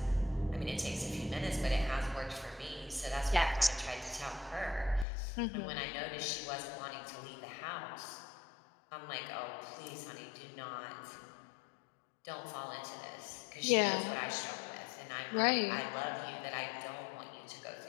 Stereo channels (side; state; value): right; drops out; at 5.1 s